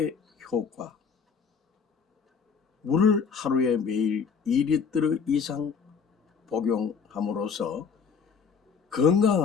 효과, 물을 하루에 매일 2리터 이상 복용함으로써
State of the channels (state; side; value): quieter; right; 6.1 dB